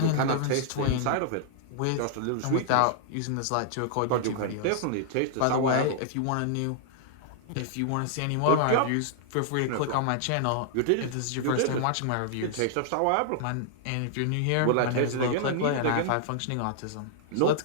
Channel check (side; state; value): both; different; correlation -0.01